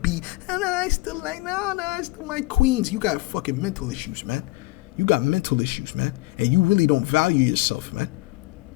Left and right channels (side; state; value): right; quieter; 21.1 dB